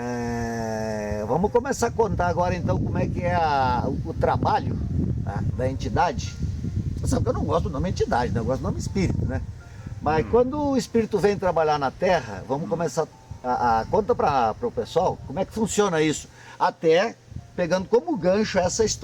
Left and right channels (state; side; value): identical; both; correlation 1.00